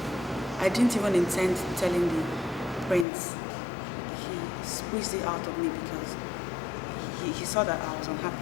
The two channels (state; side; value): drops out; right; at 3.1 s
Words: I didn't even intend telling the prince. He squeezed it out of me because he saw that I was